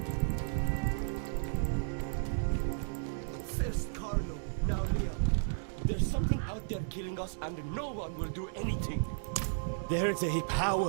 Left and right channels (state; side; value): silent; left; digital silence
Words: First Carlo, now Leo. There's something out there killing us and no one will do anything. There's a